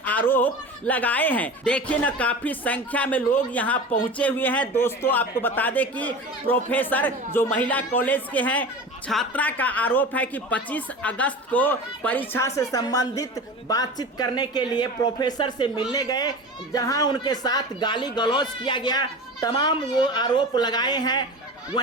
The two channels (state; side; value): normal; both; correlation 0.32